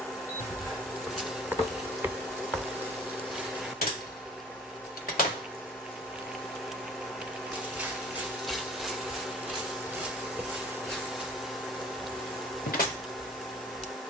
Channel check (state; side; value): normal; both; correlation 0.49